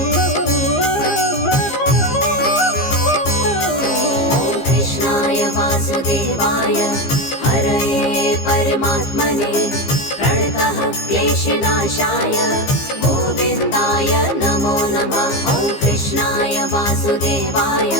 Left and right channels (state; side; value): late; right; 15 ms